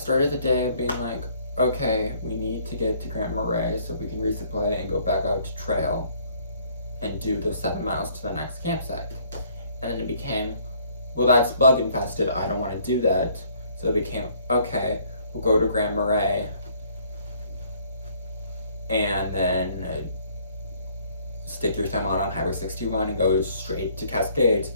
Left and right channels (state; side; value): inverted; both; correlation -0.62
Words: the day being like, okay, we need to get to Grand Marais so we can resupply and go back out to trail and do those 7 miles to the next campsite. And then it became, well, that's bug infested, I don't want to do that. So it became, okay, we'll go to Grand Marais and then stick your thumb out on Highway 61 and go straight to Cascades